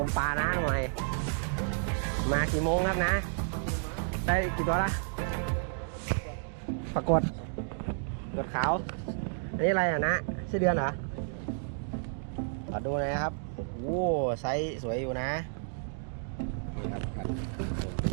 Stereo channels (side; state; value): left; silent; digital silence